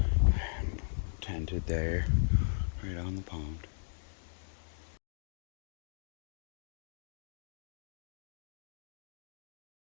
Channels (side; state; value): right; silent; digital silence